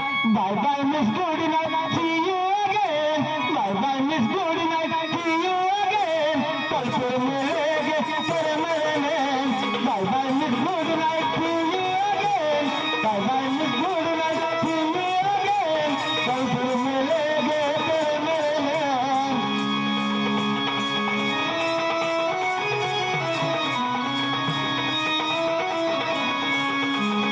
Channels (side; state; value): both; identical; correlation 1.00